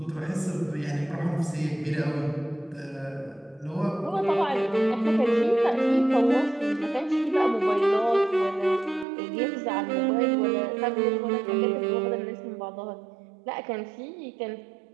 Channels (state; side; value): drops out; left; at 9.1 s